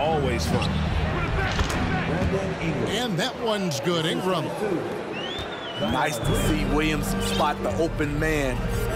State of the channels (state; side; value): identical; both; correlation 1.00